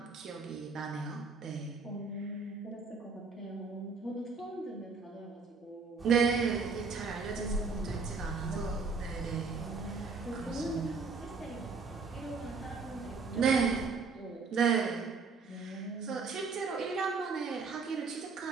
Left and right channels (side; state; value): left; quieter; 4.6 dB